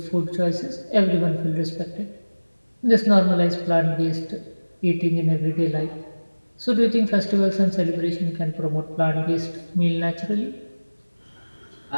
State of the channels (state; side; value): inverted; both; correlation -1.00